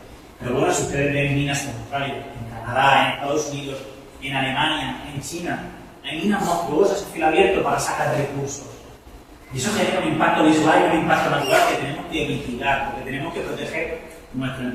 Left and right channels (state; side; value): identical; both; correlation 1.00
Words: Pero bueno, si ustedes ven minas en Australia, en Canadá, en Estados Unidos, en Alemania, en China, hay minas monstruosas a cielo abierto para sacar recursos. Y eso genera un impacto visual y un impacto natural que tenemos que mitigar, porque tenemos que proteger nuestro